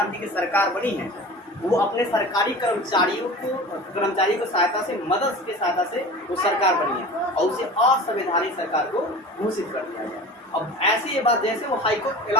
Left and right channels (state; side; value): normal; both; correlation 0.36